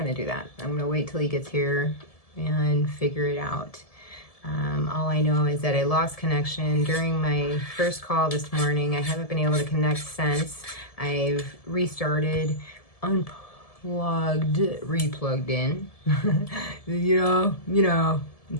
to do that. I'm going to wait till he gets here and figure it out. All I know is that I lost connection during my first call this morning. I haven't been able to connect since. I've restarted, unplugged, replugged in. you know,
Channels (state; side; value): late; right; 1.7 ms